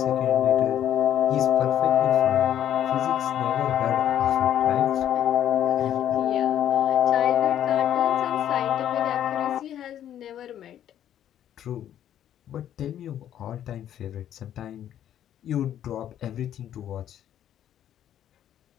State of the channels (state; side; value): quieter; right; 10.8 dB